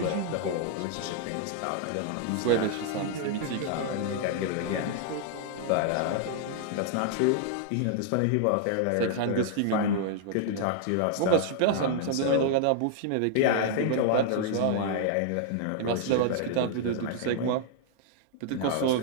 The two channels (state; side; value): different; both; correlation -0.01